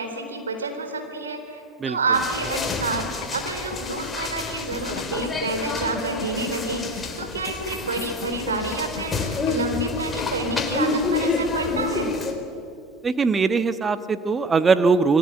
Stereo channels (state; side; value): normal; both; correlation 0.31